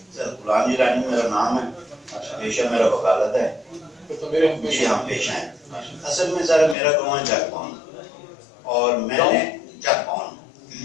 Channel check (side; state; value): right; drops out; at 6.8 s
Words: سر غلام جیلانی میرا نام ہے, پیشہ میرا وکالت ہے. تو میرے ہم جی ہاں پیشہ ہے. اصل میں سر میرا گاؤں چک پاؤن اور میں نے چک پاؤن,